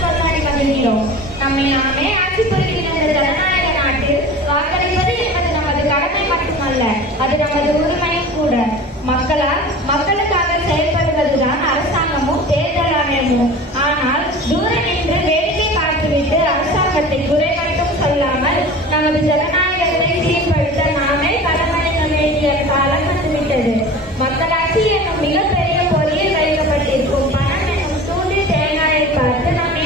கொண்டாடி வருகிறோம். நம்மை நாமே ஆட்சி புரிகின்ற இந்த ஜனநாயக நாட்டில் வாக்களிப்பது என்பது நமது கடமை மட்டுமல்ல, அது நமது உரிமையும் கூட. மக்களுக்காக செயல்படுவதுதான் அரசாங்கமும் தேர்தல் ஆணையமும். ஆனால் தூர நின்று வேடிக்கை பார்த்துவிட்டு அரசாங்கத்தை குறை மட்டும் சொல்லாமல் நமது ஜனநாயகத்தை சீர்படுத்த நாமே களமறிய வேண்டிய காலம் வந்துவிட்டது. மக்களாட்சி என்னும் மிகப்பெரிய பொறியில் வைக்கப்பட்டிருக்கும் பணம் என்னும் தூண்டி தேங்காயை பார்த்து நாம்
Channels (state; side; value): normal; both; correlation 0.38